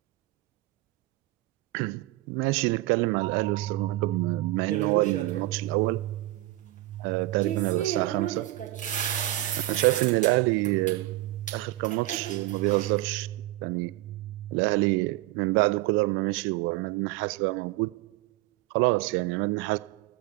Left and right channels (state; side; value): quieter; left; 17.8 dB